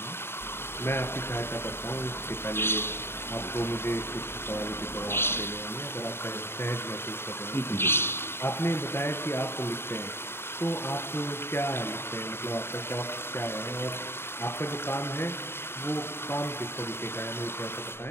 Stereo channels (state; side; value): late; right; 0.11 ms